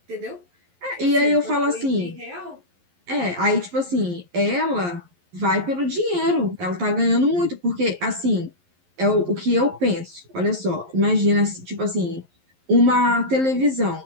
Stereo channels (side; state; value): left; late; 11 ms